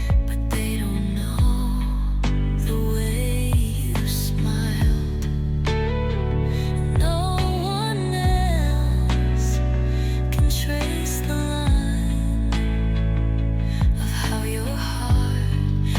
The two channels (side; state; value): both; identical; correlation 1.00